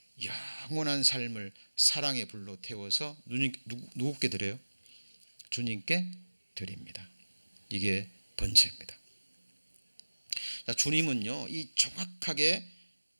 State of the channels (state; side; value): inverted; both; correlation -1.00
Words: 영원한 삶을 사랑의 불로 태워서 누구께 드려요? 주님께 드립니다. 이게 번제입니다. 자, 주님은요, 이 정확하게